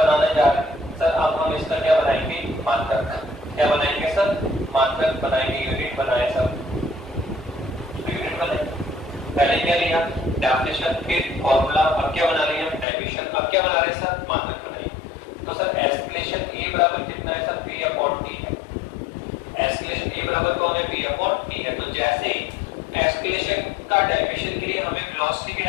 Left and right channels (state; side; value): drops out; right; at 12.9 s